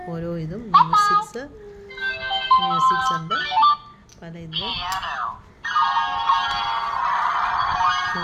ഓരോ ഇതും മ്യൂസിക്സ് ഉണ്ട് പല ഇതിൽ.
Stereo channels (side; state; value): both; identical; correlation 1.00